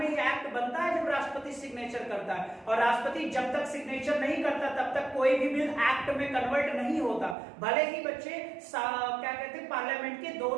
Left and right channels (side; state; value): left; drops out; at 7.4 s